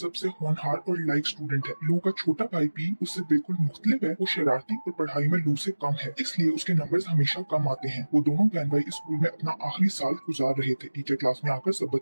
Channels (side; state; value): both; inverted; correlation -1.00